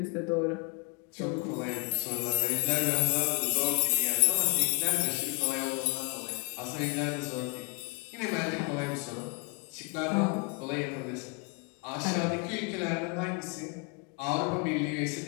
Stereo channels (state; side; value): quieter; right; 33.1 dB